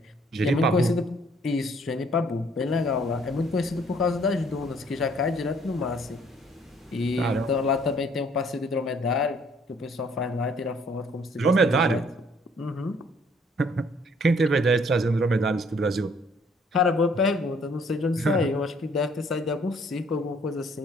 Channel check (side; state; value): both; normal; correlation 0.61